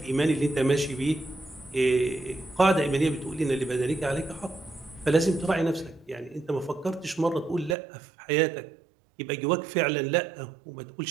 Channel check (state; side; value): drops out; left; at 7.8 s